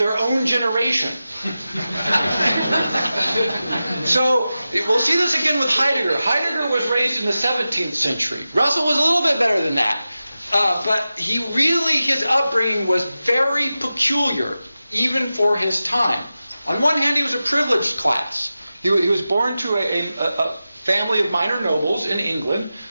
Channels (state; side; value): inverted; both; correlation -0.94